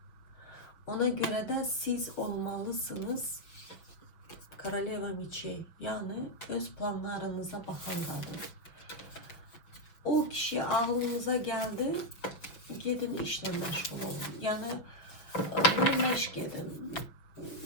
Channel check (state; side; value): late; right; 6.0 ms